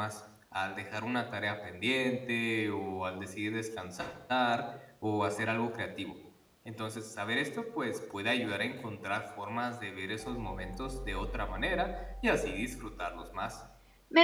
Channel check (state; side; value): identical; both; correlation 1.00